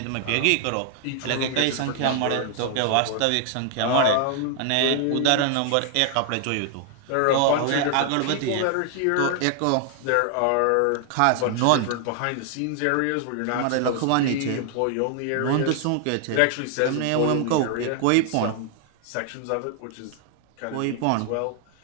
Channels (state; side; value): different; both; correlation 0.00